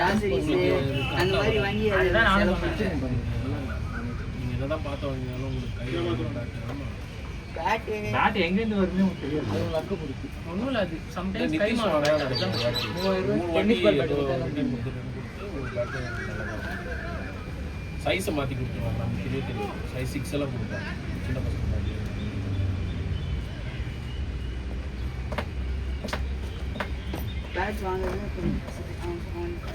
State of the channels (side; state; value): both; identical; correlation 1.00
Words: அந்த மாதிரி வாங்கி அதுதான் நானும் செலவு சொன்னேன். நீங்க என்னதான் பார்த்து வாங்கினாலும் உங்களுக்கு கையில பேட் பேட் எங்க இருந்து வருதுன்னு உங்களுக்கு தெரியாது. அது லக்கு பிடிக்கும். ஒண்ணும் இல்ல அது சம்டைம்ஸ் கை மாறும். டென்னிஸ் பால் பேட் சைஸை மாற்றி கொடுத்துருவாங்க. நமக்கு தெரியும் சைஸ் 6 எல்லாம் கொடுப்பாங்க சின்ன பசங்க. பேட் வாங்குறது